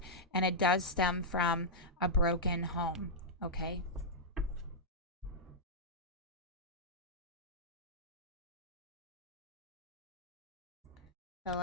and it does stem from a broken home, okay? So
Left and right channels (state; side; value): normal; both; correlation -0.08